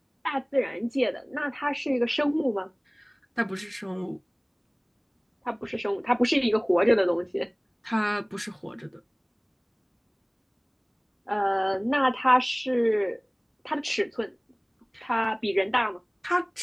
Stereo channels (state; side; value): identical; both; correlation 1.00